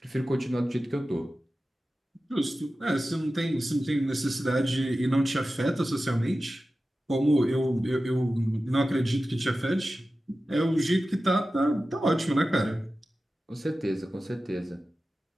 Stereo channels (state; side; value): normal; both; correlation 0.94